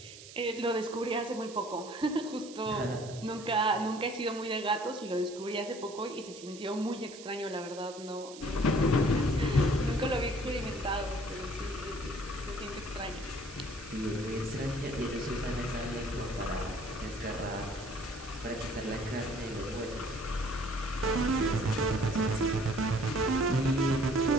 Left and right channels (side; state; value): right; noise; hiss, 16 dB below the sound